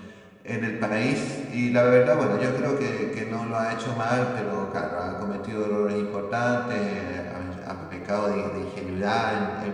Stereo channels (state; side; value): identical; both; correlation 1.00